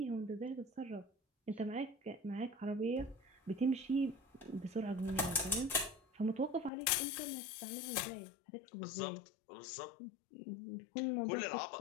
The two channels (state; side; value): drops out; right; at 6.7 s